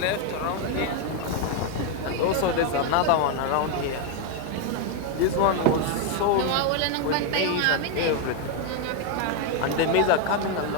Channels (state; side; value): different; both; correlation 0.01